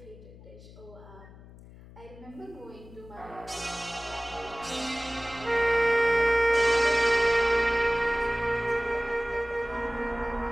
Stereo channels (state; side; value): noise; left; hum, 19 dB below the sound